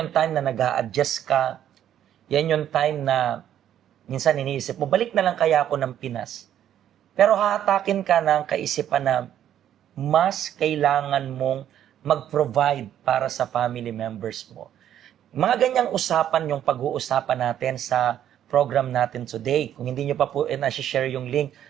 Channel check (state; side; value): quieter; left; 10.7 dB